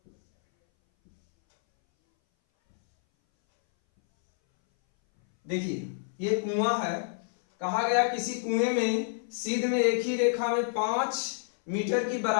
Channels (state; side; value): silent; right; 59 dB below the other